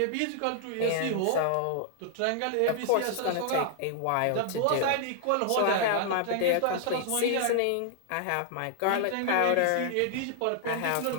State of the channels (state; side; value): different; both; correlation 0.00